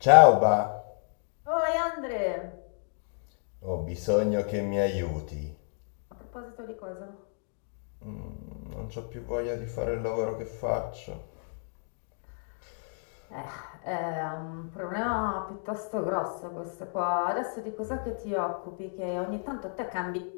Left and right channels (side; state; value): right; silent; 57 dB below the other